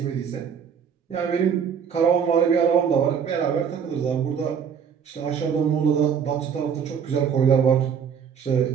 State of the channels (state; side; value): quieter; left; 7.3 dB